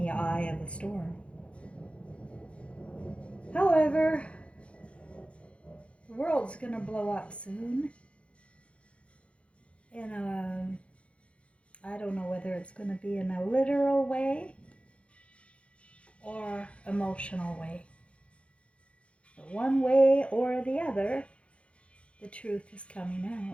eye of a storm. However, the world's gonna blow up soon. I don't know whether it's gonna be in a literal way or emotional way. But one way or the other, the truth is coming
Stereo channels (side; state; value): right; late; 0.060 ms